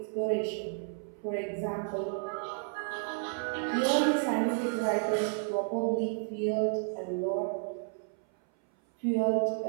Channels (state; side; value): silent; left; 57 dB below the other